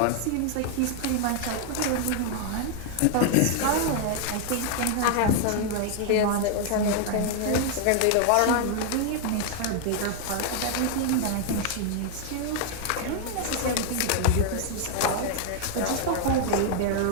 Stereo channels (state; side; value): different; both; correlation 0.00